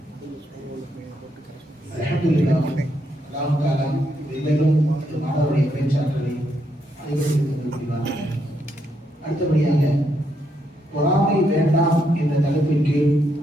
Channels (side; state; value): both; normal; correlation 0.77